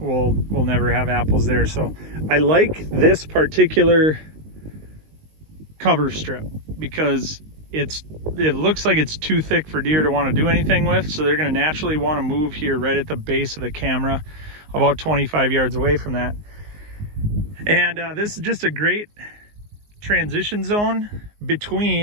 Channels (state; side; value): late; left; 19 ms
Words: never have apples there. So I like this particular cover strip because it looks like it's too thick for deer to want to do anything with, so they're going to naturally want to move here right at the base of the camera, about 25 yards away from that. And this is just a great transition zone